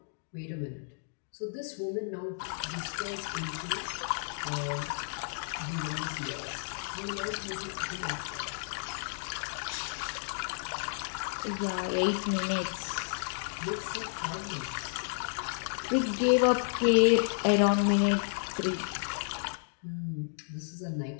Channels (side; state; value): right; silent; digital silence